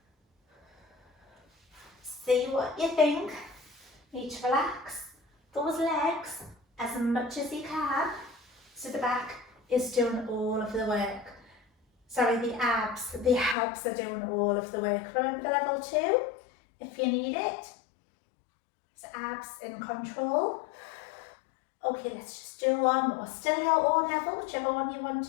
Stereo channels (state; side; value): drops out; right; at 13.6 s